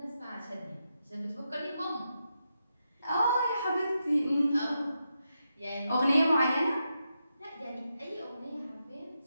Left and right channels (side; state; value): both; inverted; correlation -0.86